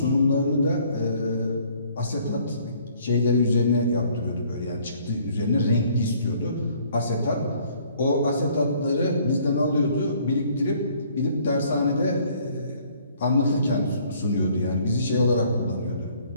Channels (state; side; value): inverted; both; correlation -0.61